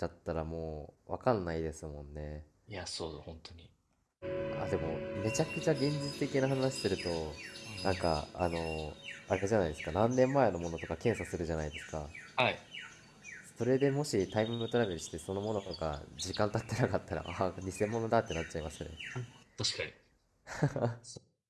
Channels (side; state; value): both; identical; correlation 1.00